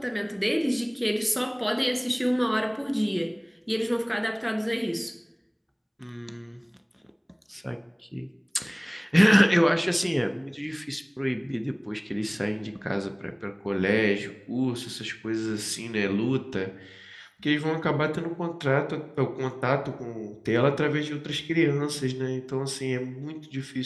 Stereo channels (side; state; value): both; identical; correlation 1.00